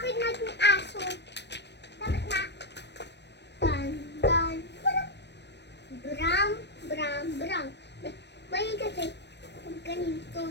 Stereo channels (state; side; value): late; right; 0.50 ms